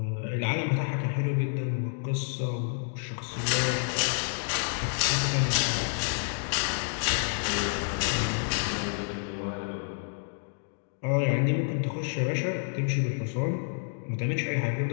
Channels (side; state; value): right; silent; digital silence